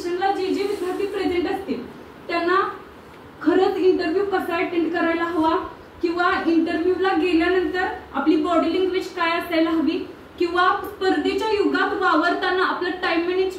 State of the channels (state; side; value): identical; both; correlation 1.00